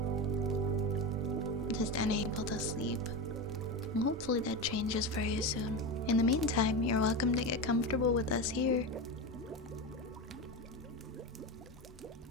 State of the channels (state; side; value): normal; both; correlation 0.20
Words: just unable to sleep. Hopefully that changes very soon. In the meantime, you're welcome to get comfortable with us here.